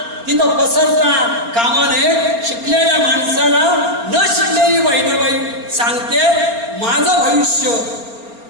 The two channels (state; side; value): late; left; 4.3 ms